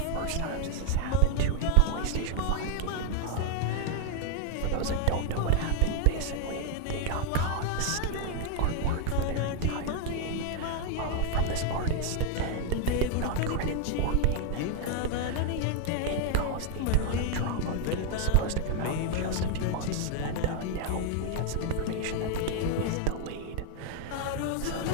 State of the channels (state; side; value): different; both; correlation 0.00